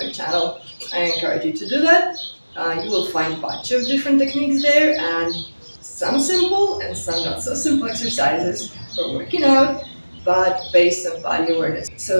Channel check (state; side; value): inverted; both; correlation -1.00